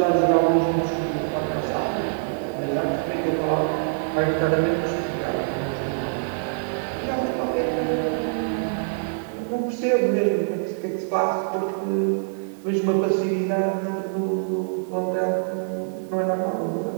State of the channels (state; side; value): silent; left; digital silence